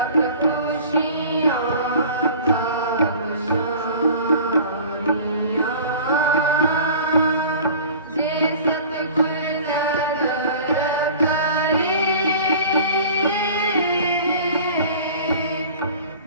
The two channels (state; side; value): inverted; both; correlation -0.43